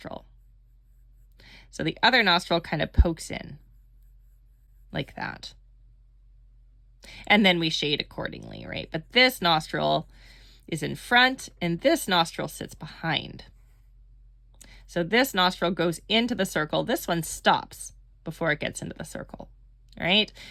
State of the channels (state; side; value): identical; both; correlation 1.00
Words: So the other nostril kind of pokes in like that. And then we shade accordingly, right? But this nostril is in front and this nostril sits behind. So this nostril goes into the circle. This one stops before it gets into the circle, right?